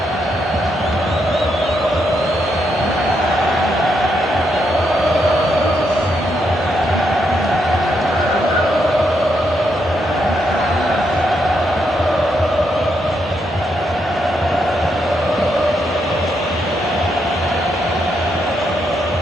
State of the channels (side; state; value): both; normal; correlation 0.79